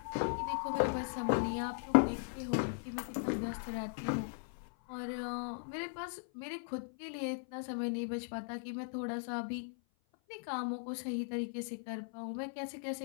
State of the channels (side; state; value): right; silent; 52 dB below the other